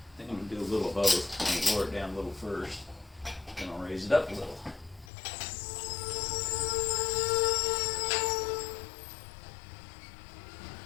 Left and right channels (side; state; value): right; drops out; at 5.1 s